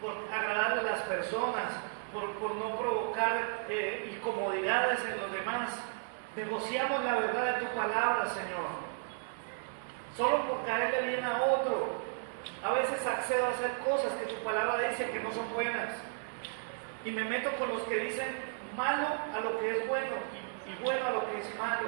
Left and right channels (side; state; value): left; silent; digital silence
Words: agradar a las personas, por no provocar incomodidades en los demás, negociamos la verdad de tu palabra, Señor. Solo por caerle bien a otro. A veces accedo a hacer cosas que tu palabra dice que no son buenas. Y me meto con los que dicen malo a lo que es bueno y bueno a lo que es